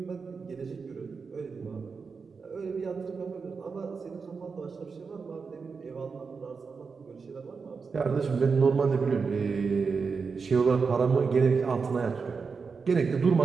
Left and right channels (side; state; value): left; quieter; 5.1 dB